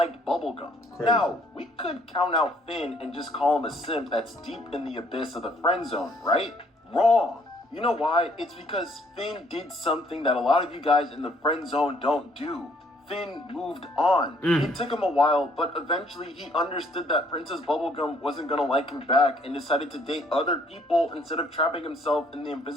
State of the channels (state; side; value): normal; both; correlation 0.64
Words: Bubblegum. Crazy. Now, we could count out Finn and just call him a simp that's deep in the abyss of the friend zone, right? Wrong. You know why? It's because Finn did something that a lot of you guys in the friend zone don't do. Finn moved on. It took him a while, but eventually he understood that Princess Bubblegum wasn't gonna like him back and decided to date other people instead of trapping himself in the